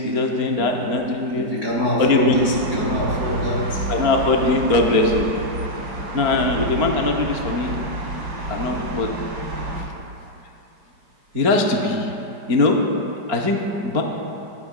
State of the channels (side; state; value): left; late; 4.8 ms